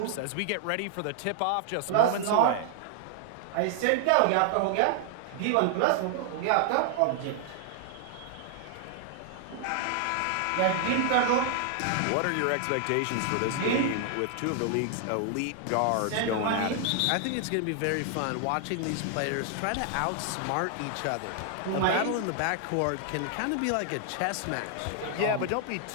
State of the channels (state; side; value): different; both; correlation 0.00